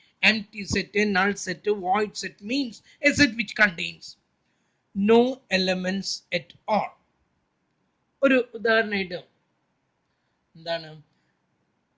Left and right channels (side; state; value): both; identical; correlation 1.00